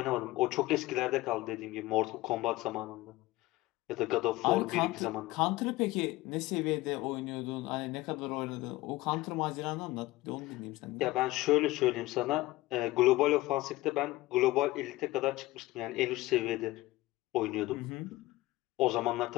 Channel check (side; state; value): right; quieter; 18.6 dB